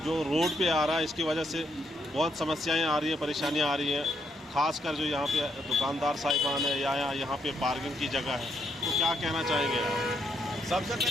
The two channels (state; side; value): normal; both; correlation 0.75